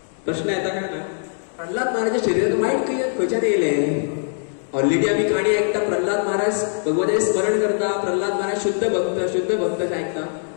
प्रश्न येता काय ना, प्रहलाद महाराजाच्या शरिरात वायट खंयच्यान येयलें. ऑलरेडी आम्ही काणी ऐकता, प्रहलाद महाराज भगवंताचे स्मरण करता, प्रहलाद महाराज शुद्ध भक्त ऐकता.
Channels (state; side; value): silent; right; digital silence